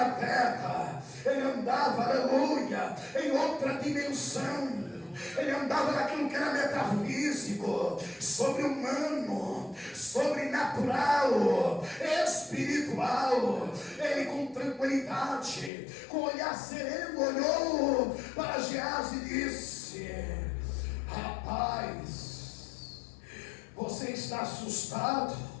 terra. Ele andava, aleluia, em outra dimensão. Ele andava naquilo que era metafísico, sobre-humano, sobrenatural, espiritual. Ele com tranquilidade, com olhar sereno, olhou para Geazi e disse, rapaz, você está assustado?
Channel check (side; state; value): right; drops out; at 15.7 s